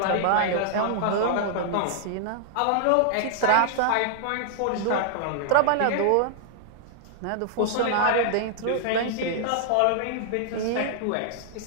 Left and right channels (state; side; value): different; both; correlation -0.01